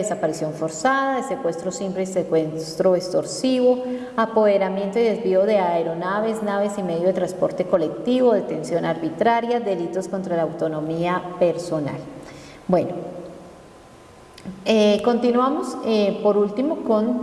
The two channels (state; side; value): identical; both; correlation 1.00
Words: forzada, de secuestro simple y secuestro extorsivo, apoderamiento y desvío de aeronaves, naves y medio de transporte colectivo, detención arbitraria, delitos contra la autonomía personal. Bueno, continuamos por último